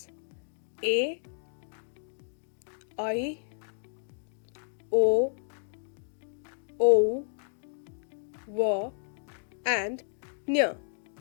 A, I, O, V, and Nya.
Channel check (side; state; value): right; silent; digital silence